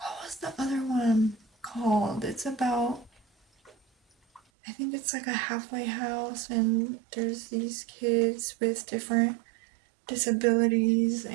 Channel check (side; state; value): left; drops out; at 4.4 s